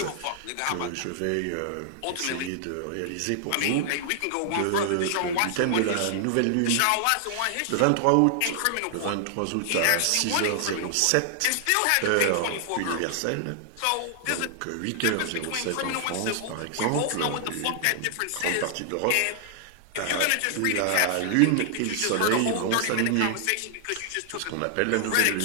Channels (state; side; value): different; both; correlation 0.00